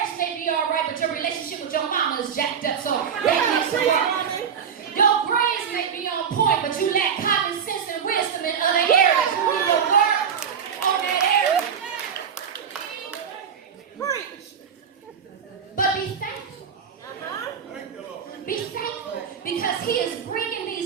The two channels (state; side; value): quieter; left; 7.4 dB